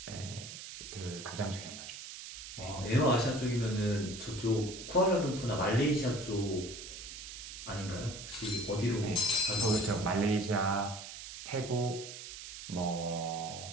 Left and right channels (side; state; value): right; noise; hiss, 11 dB below the sound